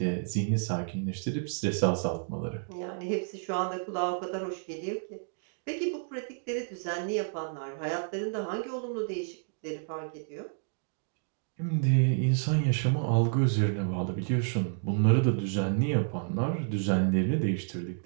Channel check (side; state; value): left; silent; digital silence